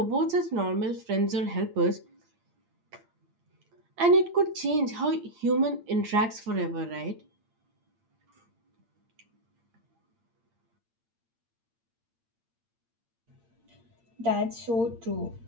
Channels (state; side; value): late; left; 8.7 ms